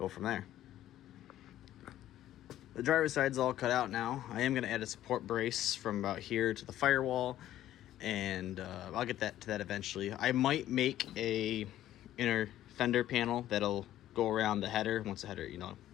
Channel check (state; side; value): quieter; right; 12.9 dB